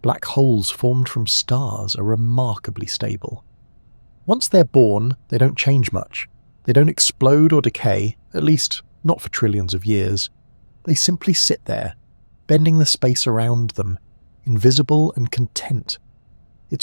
black holes formed from stars are remarkably stable. Once they're born, they don't change much. They don't explode or decay, at least not for trillions of years. They simply sit there, bending the space around them, invisible and content.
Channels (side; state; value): both; inverted; correlation -1.00